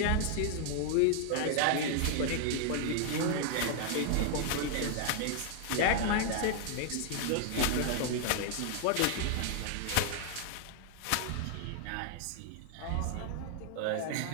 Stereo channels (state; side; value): different; both; correlation 0.00